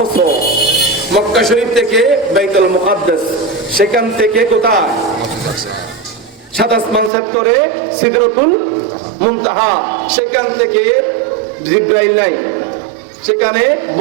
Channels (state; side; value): drops out; left; at 7.1 s